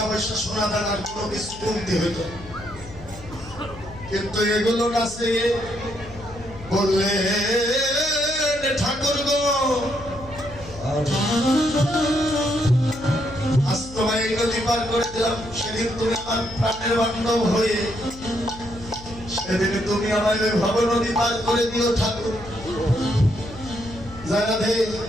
পয়সা সোনা দানার কোনো কিছু কমতি হইত, কিন্তু এগুলো কাছে বললে ঠাকুর গো আজ তোমায় এই নদী পার করে দিলাম, সেদিন তুমি আমার প্রাণের বান্ধব হয়ে সেদিন তুমি আমায় ভব নদী পার করে দিও ঠাকুর। যারা দে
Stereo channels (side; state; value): left; noise; hum, 17 dB below the sound